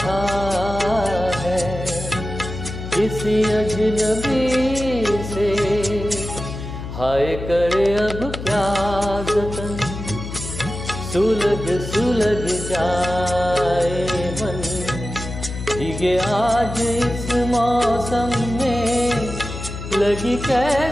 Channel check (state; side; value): noise; left; hum, 8 dB below the sound